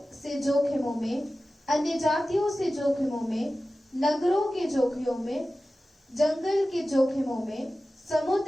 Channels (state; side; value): normal; both; correlation 0.95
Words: से जोखिमों में, अन्य जातियों से जोखिमों में, नगरों के जोखिमों में, जंगल के जोखिमों में,